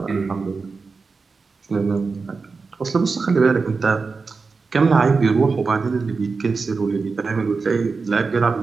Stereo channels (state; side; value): quieter; left; 4.5 dB